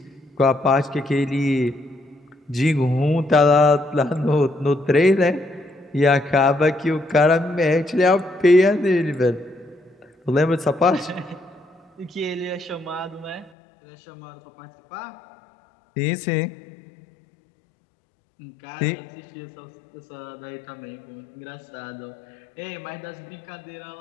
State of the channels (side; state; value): right; drops out; at 13.5 s